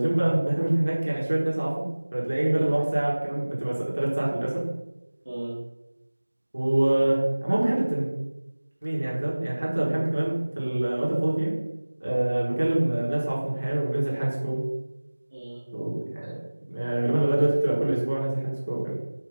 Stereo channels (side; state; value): both; inverted; correlation -1.00